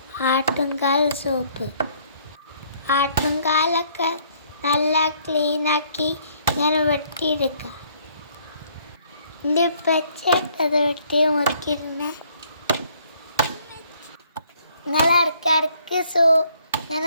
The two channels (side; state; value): both; inverted; correlation -0.64